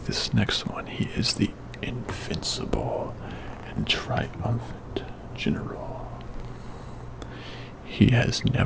this next one. He is the invincible and triumphant general. He has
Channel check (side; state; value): both; identical; correlation 1.00